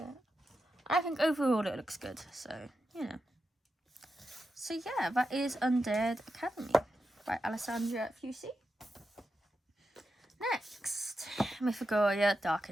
I think overall it looks good, so, you know. So yeah, that is Undead Academy by Alessandra Fusi. Next, Mythagoria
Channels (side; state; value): both; normal; correlation 0.89